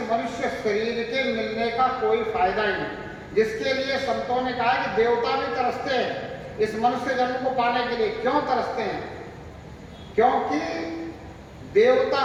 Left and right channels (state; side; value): identical; both; correlation 1.00